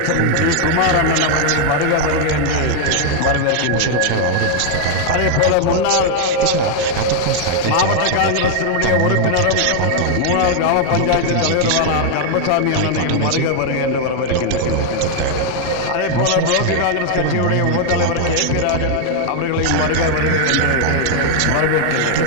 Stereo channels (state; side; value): different; both; correlation 0.00